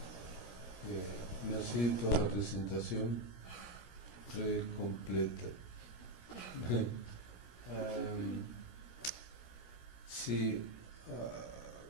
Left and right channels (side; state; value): right; late; 17 ms